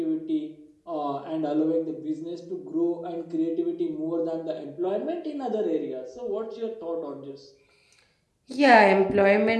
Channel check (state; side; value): identical; both; correlation 1.00